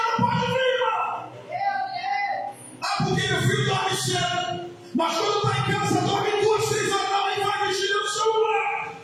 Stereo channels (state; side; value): identical; both; correlation 1.00